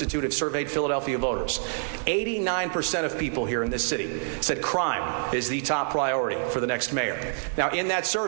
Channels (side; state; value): left; silent; digital silence